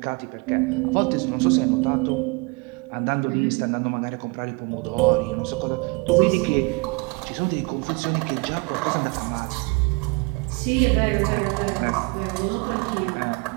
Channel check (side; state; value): left; quieter; 28.3 dB